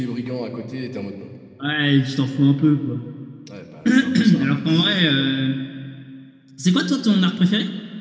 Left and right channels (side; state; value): both; identical; correlation 1.00